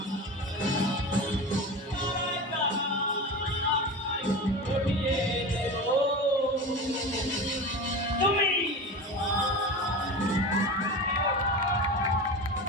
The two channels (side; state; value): both; normal; correlation 0.28